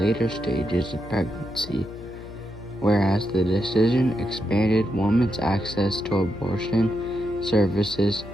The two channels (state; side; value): noise; left; hum, 15 dB below the sound